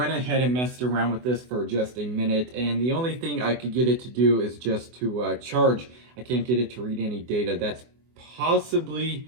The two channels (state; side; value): late; left; 24 ms